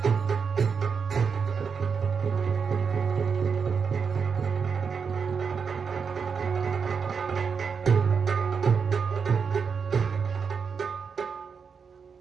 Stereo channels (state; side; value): quieter; left; 6.0 dB